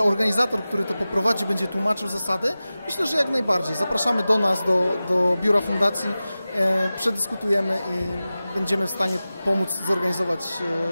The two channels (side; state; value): both; inverted; correlation -0.96